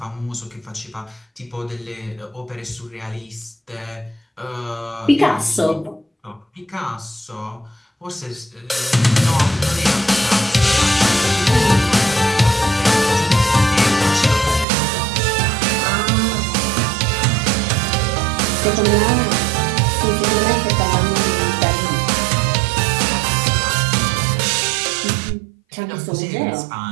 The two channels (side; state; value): left; drops out; at 14.7 s